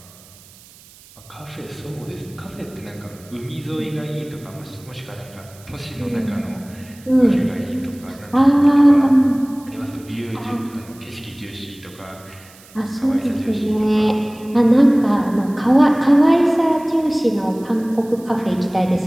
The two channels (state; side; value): noise; right; hiss, 24 dB below the sound